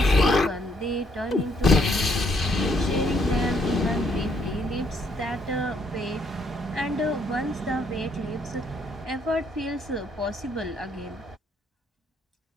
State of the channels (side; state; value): both; normal; correlation 0.70